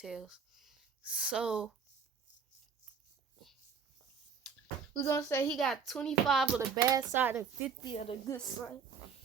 So we're gonna say he got 25 of the bad side and 50 of the good side.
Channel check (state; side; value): quieter; left; 6.3 dB